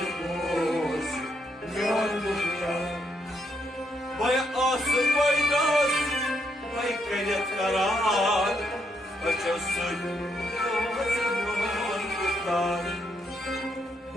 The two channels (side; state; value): both; normal; correlation 0.76